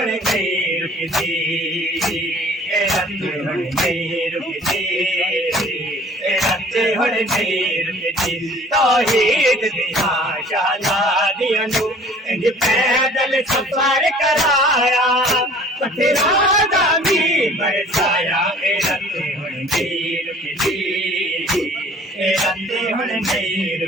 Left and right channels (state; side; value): normal; both; correlation 0.50